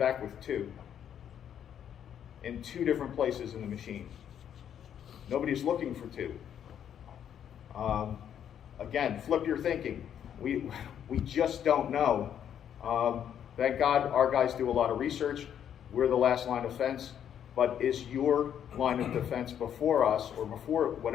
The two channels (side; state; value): right; quieter; 9.3 dB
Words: with two in two different places in the machine. Nobody's looking for two. Again, flip your thinking. We just don't know. Thank God our guys do a lot of research. We're the last line of defense. But is your line of defense before us, or before